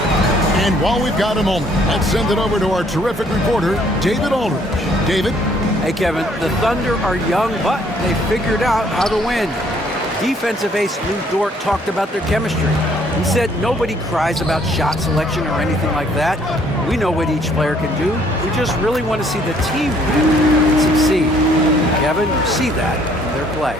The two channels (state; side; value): normal; both; correlation 0.63